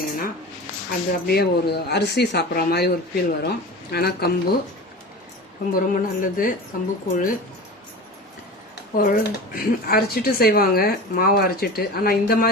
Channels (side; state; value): both; normal; correlation 0.33